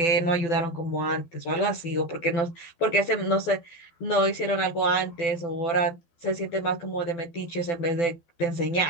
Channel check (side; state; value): right; late; 12 ms